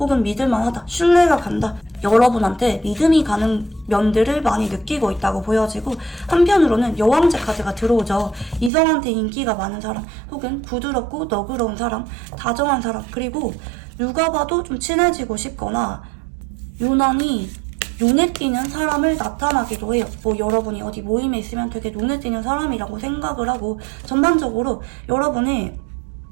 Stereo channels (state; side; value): drops out; left; at 8.7 s